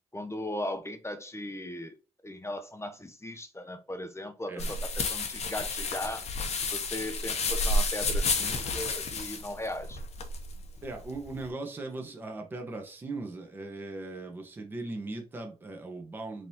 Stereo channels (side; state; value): both; normal; correlation 0.45